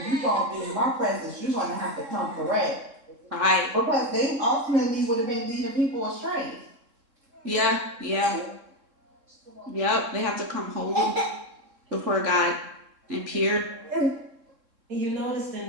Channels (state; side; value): late; left; 3.7 ms